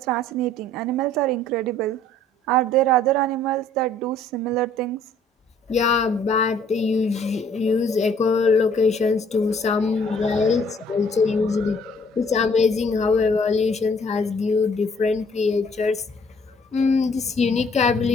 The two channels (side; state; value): both; normal; correlation 0.59